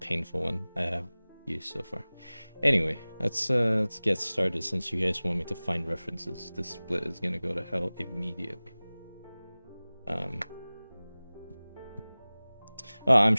one I have used so far. Anyway, let's get started, since you guys want me to find references. This split is gonna go to hell immediately. Oh, I'm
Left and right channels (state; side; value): inverted; both; correlation -0.99